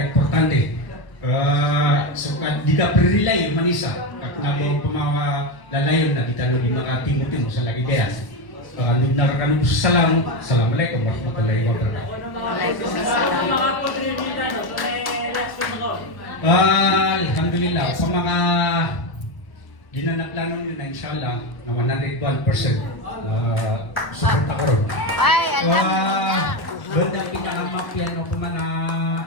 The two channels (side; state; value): right; late; 1.0 ms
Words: Suka diga perilay manisa at nabo pamawa lalayon na kita no di makatimo-timo sa lagi kaya. Nugnar kanu salam. Assalamualaikum warahmatullahi wabarakatuh. Waalaikumsalam. Alhamdulillah sa mga ginanaplano nyo na inshallah na 101% support ako ron. Ay, alhamdulillah. Banda pinakamapya no kumana